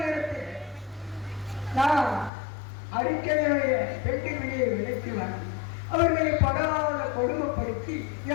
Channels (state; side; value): drops out; right; at 2.3 s